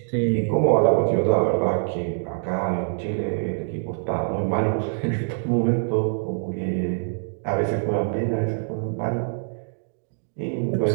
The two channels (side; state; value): left; silent; 62 dB below the other